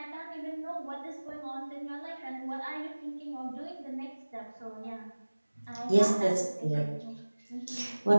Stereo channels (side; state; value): both; inverted; correlation -1.00